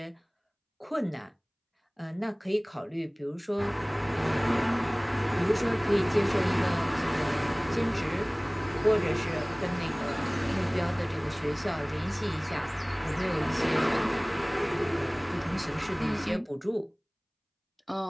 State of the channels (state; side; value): identical; both; correlation 1.00